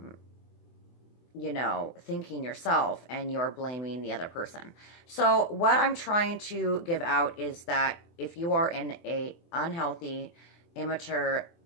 thinking yourself, and you're blaming the other person. So what I'm trying to give out is that if you are in a unhealthy, immature,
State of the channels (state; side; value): late; right; 24 ms